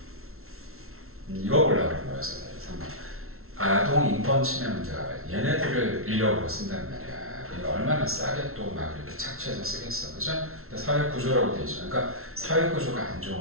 이거 보려고 그런 거였어요. 3번. 아동 인권 침해 문제가 봐요. 얘네들을 인력으로 쓴단 말이야. 그러니까 얼마나 싸게 또 막 이렇게 착취해서 쓰겠어. 그죠? 근데 사회 구조라고 돼 있죠. 그러니까 사회 구조가 안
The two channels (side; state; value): left; late; 0.62 ms